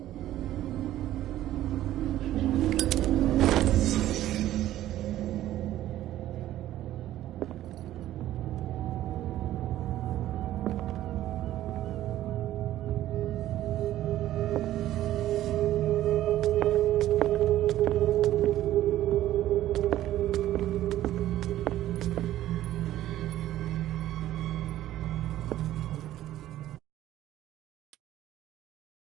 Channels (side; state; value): left; quieter; 13.6 dB